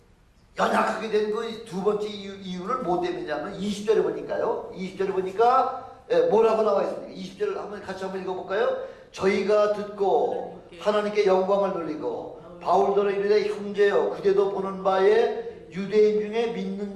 연약하게 된 그 두 번째 이유를 뭐 때문이냐면 20절에 보니까요. 20절에 보니까 뭐라고 나와 있습니까? 20절을 같이 한번 읽어볼까요? 저희가 듣고 하나님께 영광을 돌리고 바울더러 이르되 형제여 그대도 보는 바에 유대인 중에 믿는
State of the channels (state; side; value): identical; both; correlation 1.00